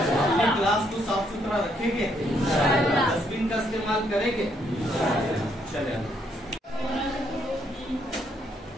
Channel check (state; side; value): normal; both; correlation 0.72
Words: क्लास को साफ सुथरा रखेंगे, डस्टबिन का इस्तेमाल करेंगे। चले